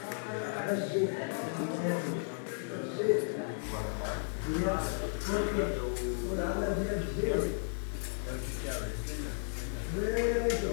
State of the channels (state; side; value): silent; right; digital silence